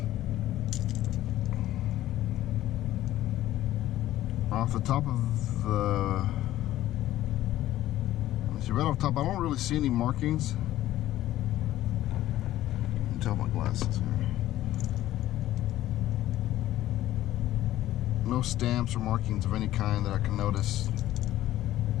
Off the top of the... Let's see, right off the top, I don't really see any markings. You can tell my glasses here. No stamps or markings of any kind that I can notice,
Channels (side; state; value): right; quieter; 14.2 dB